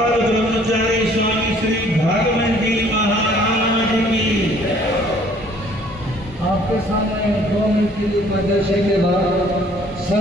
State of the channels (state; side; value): normal; both; correlation 0.58